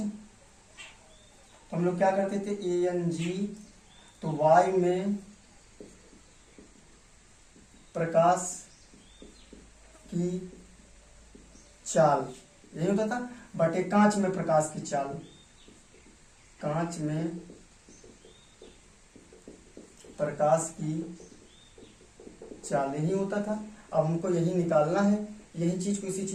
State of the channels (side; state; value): both; identical; correlation 1.00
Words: हम लोग क्या करते थे, AnG, तो वायु में प्रकाश की चाल यही होता था, बटे कांच में प्रकाश की चाल, कांच में प्रकाश की चाल यही होता था। अब हमको यही निकालना है, यही चीज को, इसी